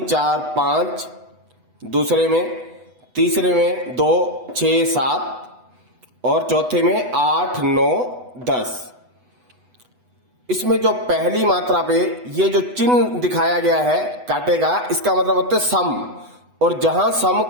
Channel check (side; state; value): left; late; 8.1 ms